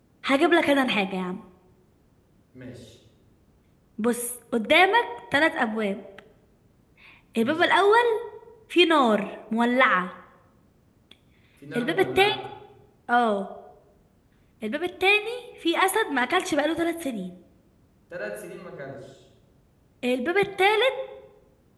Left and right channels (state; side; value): identical; both; correlation 1.00